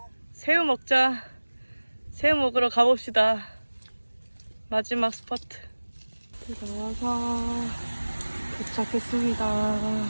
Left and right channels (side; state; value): both; inverted; correlation -1.00